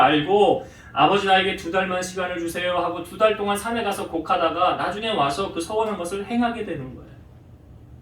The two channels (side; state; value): both; identical; correlation 1.00